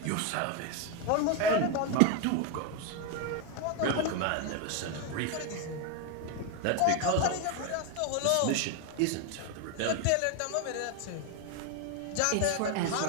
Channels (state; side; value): different; both; correlation 0.01